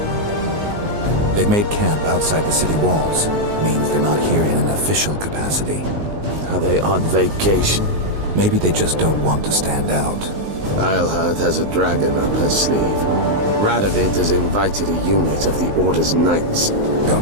They've made camp outside the city walls. Means they're not here in an official capacity. Are they on vacation? Maybe they just don't want to stand out. Eilhart has a dragon up her sleeve. Radovid has invited a unit of the Order's knights.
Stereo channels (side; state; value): left; late; 19 ms